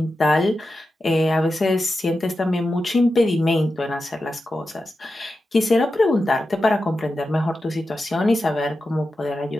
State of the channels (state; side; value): normal; both; correlation 0.91